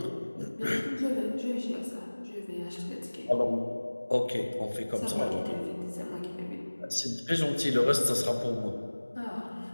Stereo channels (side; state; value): both; inverted; correlation -1.00